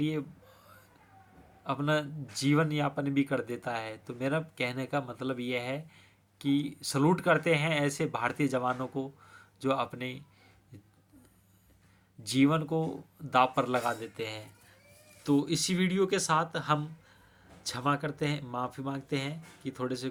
अपना जीवन यापन भी कर देता है। तो मेरा कहने का मतलब यह है कि सलूट करते हैं ऐसे भारतीय जवानों को जो अपने जीवन को दांव पर लगा देते हैं। तो इसी वीडियो के साथ हम क्षमा करते हैं, माफ़ी मांगते हैं कि थोड़े से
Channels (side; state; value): both; identical; correlation 1.00